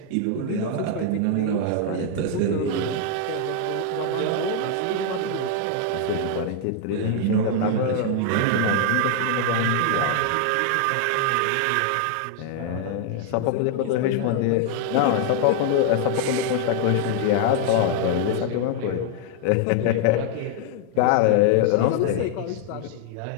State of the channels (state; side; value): different; both; correlation 0.00